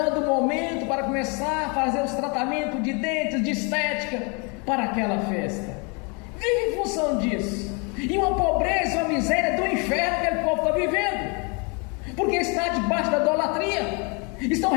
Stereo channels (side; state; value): right; quieter; 33.2 dB